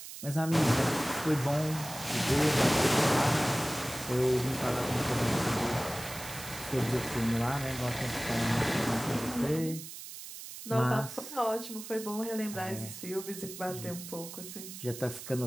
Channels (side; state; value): right; noise; hiss, 11 dB below the sound